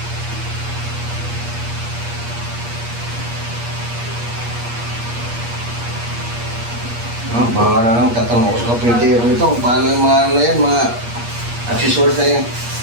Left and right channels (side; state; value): left; late; 8.5 ms